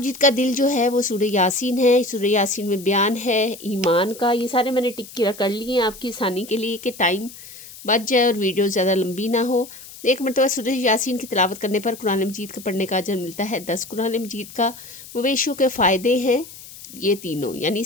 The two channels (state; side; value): noise; left; hiss, 17 dB below the sound